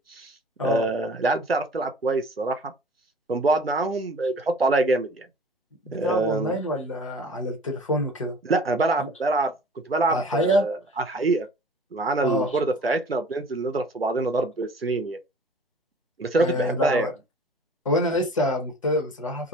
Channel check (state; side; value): normal; both; correlation 0.47